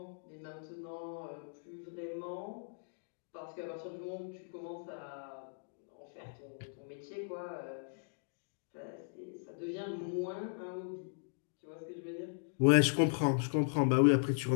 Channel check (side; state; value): right; silent; digital silence